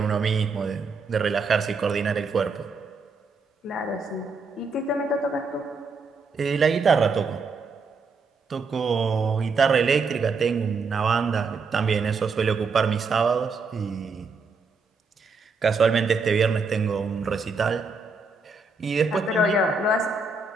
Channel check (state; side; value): quieter; left; 4.2 dB